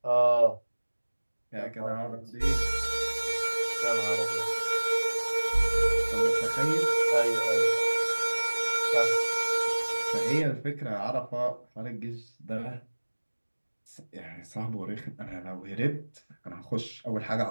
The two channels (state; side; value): inverted; both; correlation -1.00